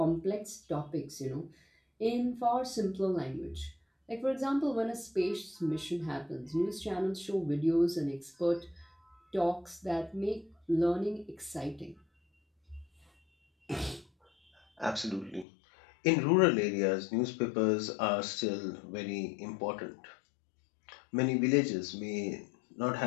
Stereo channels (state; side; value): drops out; right; at 15.5 s